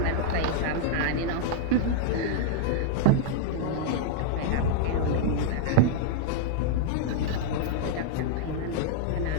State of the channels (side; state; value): both; different; correlation -0.01